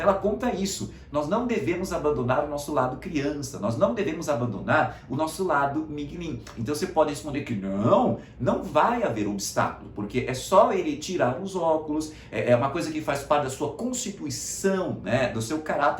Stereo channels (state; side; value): identical; both; correlation 1.00